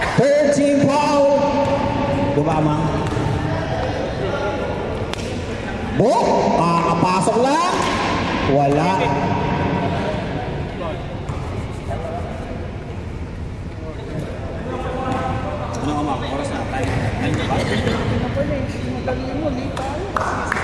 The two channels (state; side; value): identical; both; correlation 1.00